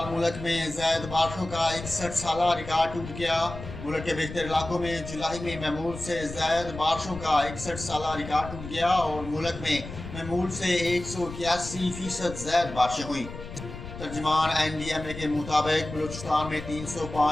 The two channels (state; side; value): noise; left; rumble, 11 dB below the sound